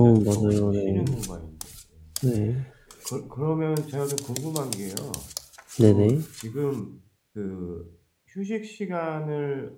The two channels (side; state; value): both; identical; correlation 1.00